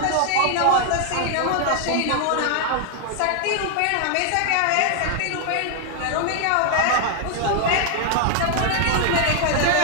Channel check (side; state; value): both; different; correlation 0.00